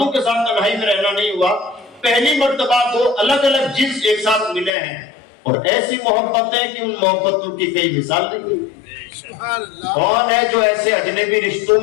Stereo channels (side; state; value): right; drops out; at 4.7 s